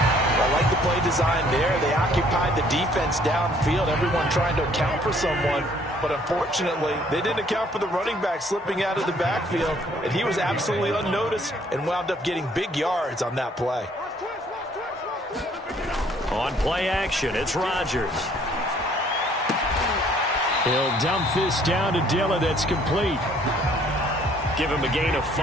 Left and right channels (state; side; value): normal; both; correlation 0.61